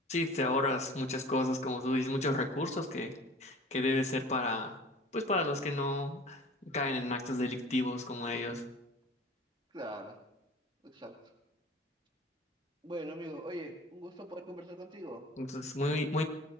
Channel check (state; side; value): normal; both; correlation 0.44